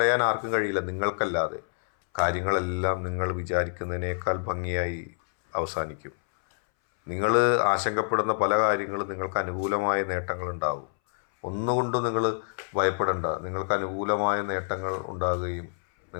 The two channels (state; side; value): silent; right; 60 dB below the other